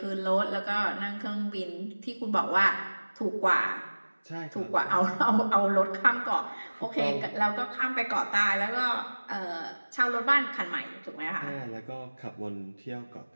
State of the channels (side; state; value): both; inverted; correlation -1.00